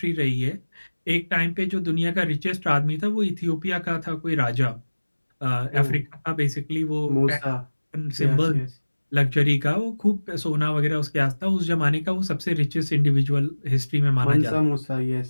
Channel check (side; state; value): both; inverted; correlation -1.00